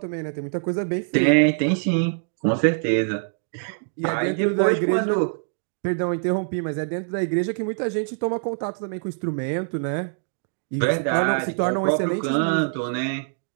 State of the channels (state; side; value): silent; left; digital silence